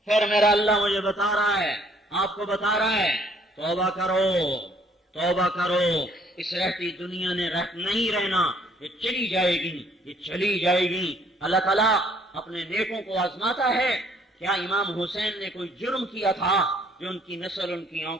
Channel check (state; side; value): normal; both; correlation 0.62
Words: پھر میرا اللہ مجھے بتا رہا ہے، آپ کو بتا رہا ہے توبہ کرو، توبہ کرو. اس رہتی دنیا نے نہیں رہنا، یہ چلی جائے گی، یہ چلی جائے گی. اللہ تعالیٰ اپنے نیکوں کو آزماتا ہے. کیا امام حسین نے کوئی جرم کیا تھا جو ان کی نسل ان کی